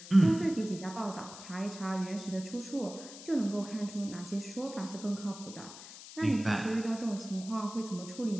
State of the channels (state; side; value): noise; left; hiss, 14 dB below the sound